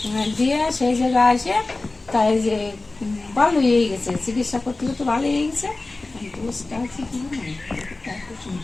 দিয়ে সেই জায়গায় আসে। তাই যে ভালো হয়ে গেছে, চিকিৎসা করতে করতে ভালো হয়ে গেছে। দোষটা আছে কি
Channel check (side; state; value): right; quieter; 3.2 dB